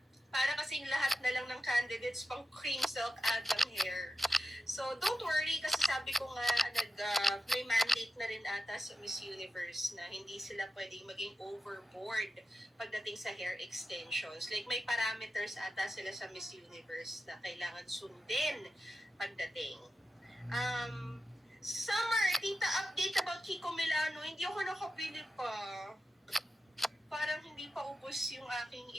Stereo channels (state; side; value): normal; both; correlation 0.91